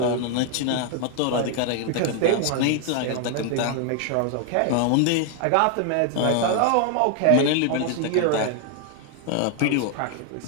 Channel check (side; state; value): both; different; correlation 0.00